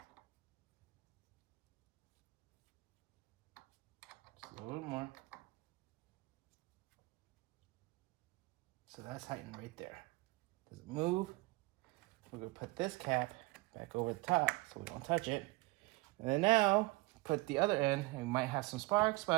Just a little bit more. So that's tightened right there. Does it move? We're going to put this cap back over the top so we don't touch it. And then now, put the other end, and we might have some sparks,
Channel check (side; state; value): left; quieter; 23.4 dB